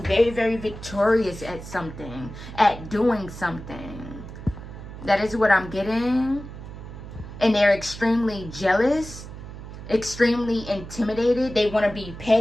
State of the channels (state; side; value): noise; right; hum, 12 dB below the sound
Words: very, very victorious at something, at doing something. That is what I'm getting. And they're extremely jealous, extremely intimidated. They want to be